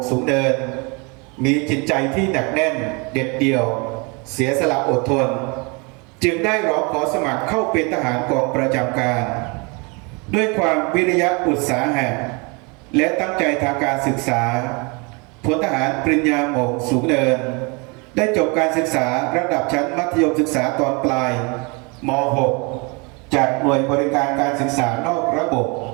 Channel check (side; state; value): left; quieter; 30.3 dB